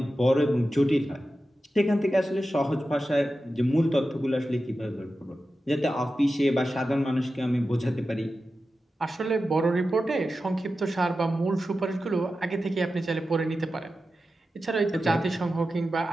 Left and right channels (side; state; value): both; normal; correlation 0.92